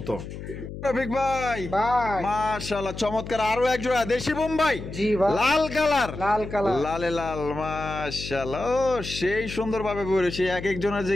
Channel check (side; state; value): left; noise; hum, 10 dB below the sound